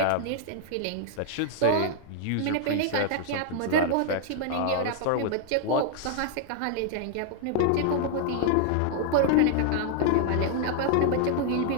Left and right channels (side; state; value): both; different; correlation 0.00